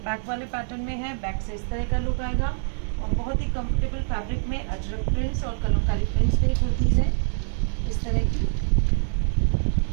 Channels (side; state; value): left; silent; digital silence